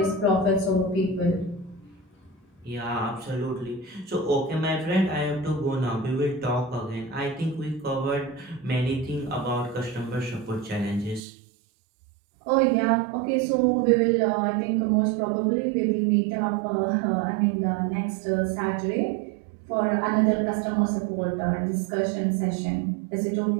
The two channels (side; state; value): left; drops out; at 11.2 s